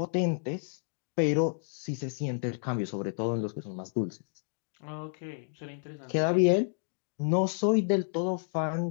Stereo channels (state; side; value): silent; right; digital silence